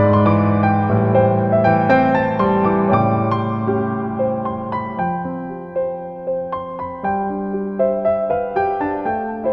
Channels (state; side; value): identical; both; correlation 1.00